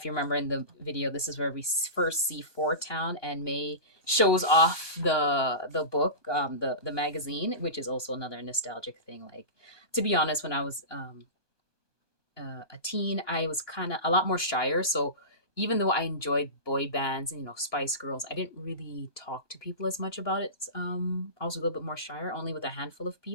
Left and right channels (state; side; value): late; left; 1.2 ms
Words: you remember in the video, this is where we first see Fort Town, and May shows off the book, the magazine, which is also another nostalgic thing. Like, to be honest, when I was a teen, I was kind of a lot more shyer. So even though I enjoyed boy bands and Spice Girls, I didn't really talk to people as much about it. I was a little bit more shyer. Only with a handful of